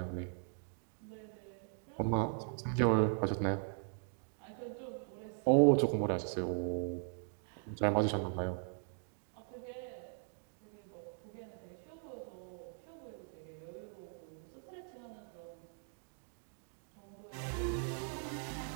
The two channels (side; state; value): left; silent; 51 dB below the other